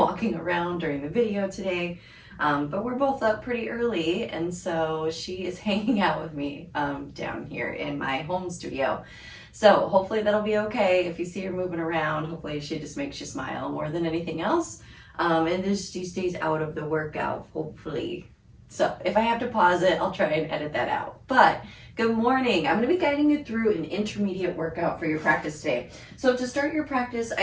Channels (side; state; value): both; identical; correlation 1.00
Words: around during the video today, but we're both up pretty early, and so she is hanging out with me down here in my home studio. So hopefully that'll be okay. If you see her moving around, hopefully she just makes you smile more than anything else, and just she stays out of the workout, hopefully. So if I have to pause it, I'll try and edit that out. But good morning. I'm going to be guiding you through an intermediate workout for your practice today. So to start your practice,